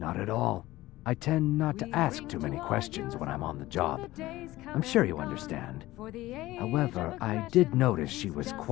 at all. I tend not to ask too many questions when I'm on the job. I'm sure you understand. However, I did notice she was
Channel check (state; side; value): quieter; right; 17.3 dB